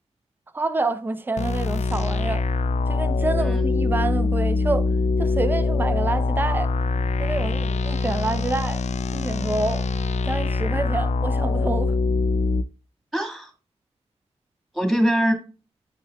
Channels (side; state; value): both; normal; correlation 0.82